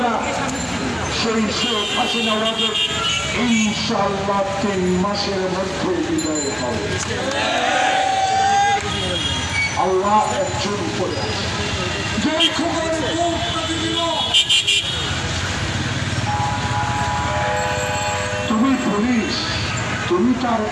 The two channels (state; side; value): identical; both; correlation 1.00